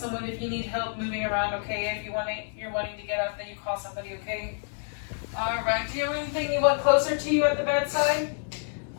if you need help moving around, okay? If you're wanting to get up, then you call somebody, okay? All right, do you have anything you want closer to you at the bedside?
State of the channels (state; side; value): silent; right; digital silence